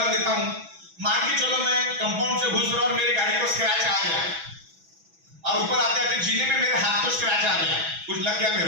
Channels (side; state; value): left; late; 6.1 ms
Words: देता हूं। मान के चलो मैं कंपाउंड से घुस रहा और मेरी गाड़ी को स्क्रैच आ गया और ऊपर आते आते जीने में मेरे हाथ को स्क्रैच आ गया, कुछ लग गया